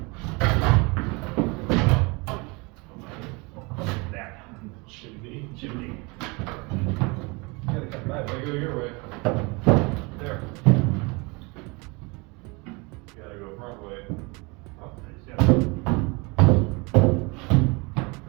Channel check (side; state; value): left; quieter; 27.7 dB